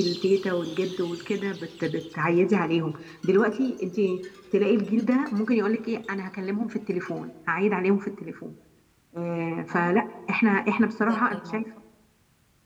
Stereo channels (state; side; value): identical; both; correlation 1.00